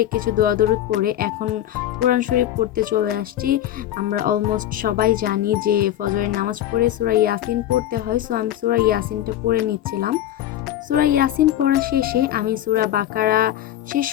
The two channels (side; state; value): right; quieter; 12.3 dB